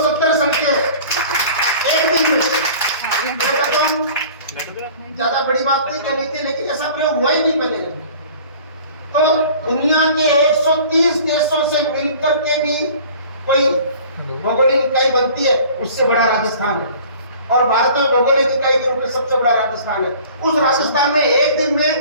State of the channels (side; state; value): both; inverted; correlation -0.47